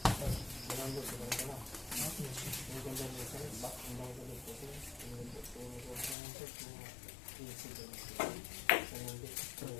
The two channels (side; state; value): right; drops out; at 6.2 s